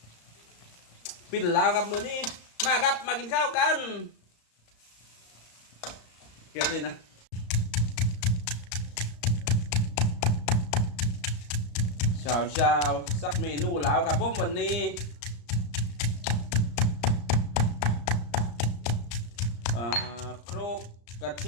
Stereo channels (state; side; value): late; right; 34 ms